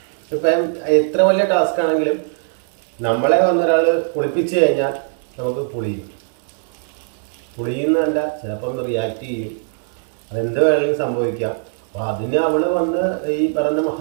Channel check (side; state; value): left; silent; 66 dB below the other